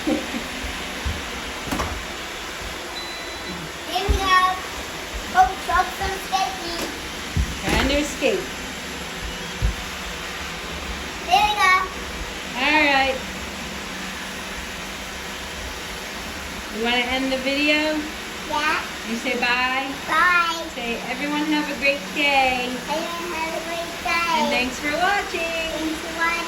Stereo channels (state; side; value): identical; both; correlation 1.00